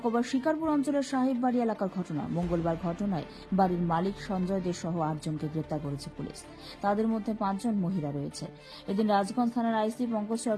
শিকারপুর অঞ্চলের সাহেববাড়ি এলাকার ঘটনা। মঙ্গলবার ঘটনায় বাড়ির মালিক সঞ্জয় দে সহ ৮ জনকে গ্রেপ্তার করেছে পুলিশ। তাদের মধ্যে ৫ জন মহিলা রয়েছে। এদিন রাজগঞ্জ থানার আইসি পঙ্কজ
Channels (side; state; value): both; identical; correlation 1.00